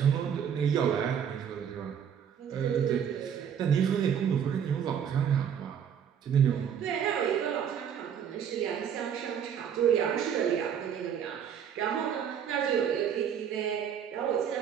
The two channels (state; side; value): quieter; left; 8.4 dB